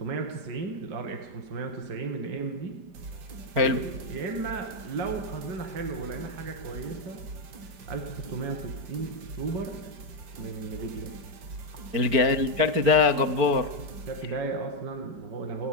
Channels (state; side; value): late; left; 5.0 ms